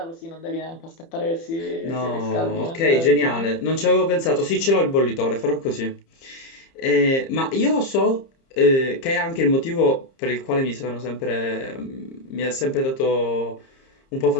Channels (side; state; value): right; late; 30 ms